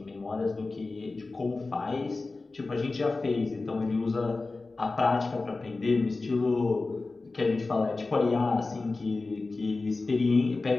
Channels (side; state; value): right; quieter; 3.6 dB